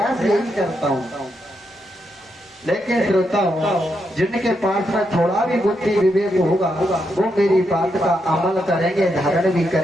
यही करता हूँ। लेकिन श्रोताओं, जिनके पास में थोड़ा भी बुद्धि विवेक होगा वो मेरी बात का अमल करेंगे, धारण भी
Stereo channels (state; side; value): normal; both; correlation 0.82